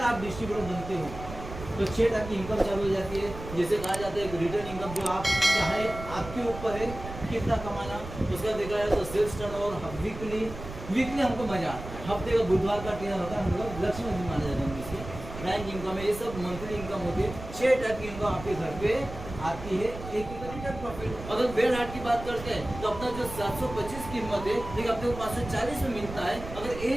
आप डिस्ट्रीब्यूटर बनते हो तो 6 टाइप की इनकम चालू हो जाती है। जैसे कहा जाता है एक रिटर्न इनकम, जो आप चाहे आपके ऊपर है कितना कमाना। उसका देखा जाए तो सेल्स टर्नओवर वीकली हमको मजा आता है। हफ्ते का बुधवार का ट्रेन होता है, हम लोग लक्ष्मी दिन माना जाता है इसके। बैंक इनकम है, ये सब मंथली इनकम होती है। 6 टाइप की इनकम आपके घर पे आती है। एक रिटर्न प्रॉफिट। अगर बेड हार्ट की बात करते हैं तो अपना जो 725 कीमत है, लेकिन अपने को 540 में मिलता है। अगर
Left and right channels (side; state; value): right; noise; rumble, 11 dB below the sound